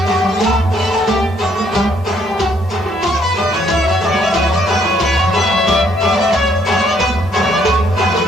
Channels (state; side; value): normal; both; correlation 0.68